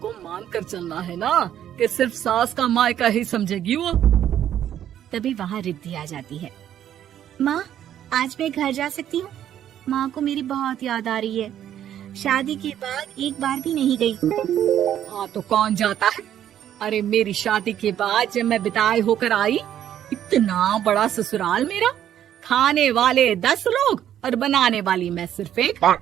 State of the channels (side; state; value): left; quieter; 10.7 dB